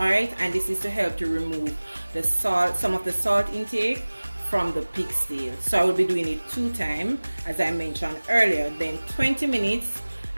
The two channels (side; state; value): both; inverted; correlation -1.00